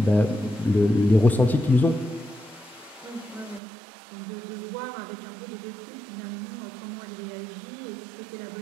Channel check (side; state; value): left; drops out; at 3.6 s